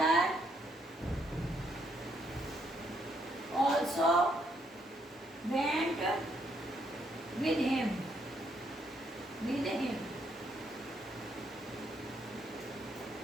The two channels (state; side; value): normal; both; correlation 0.73